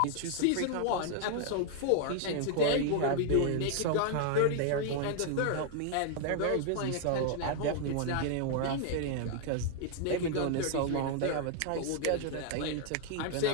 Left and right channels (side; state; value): both; different; correlation 0.00